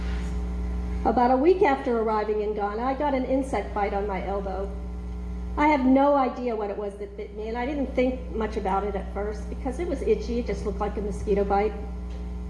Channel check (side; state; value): both; identical; correlation 1.00